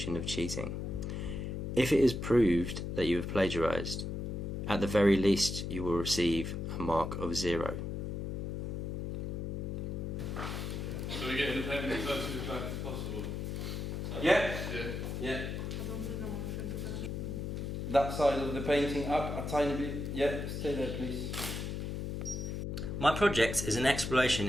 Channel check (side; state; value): left; noise; hum, 3 dB below the sound